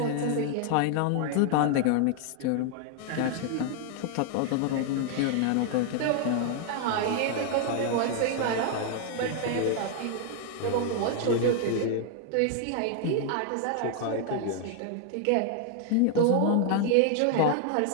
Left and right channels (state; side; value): different; both; correlation 0.00